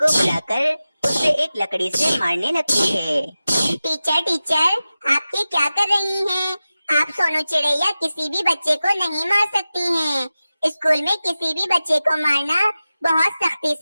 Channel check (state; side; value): inverted; both; correlation -0.95